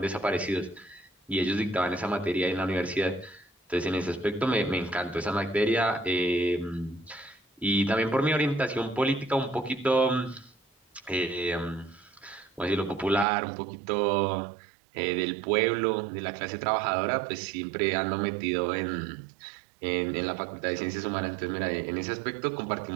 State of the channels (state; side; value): drops out; left; at 13.2 s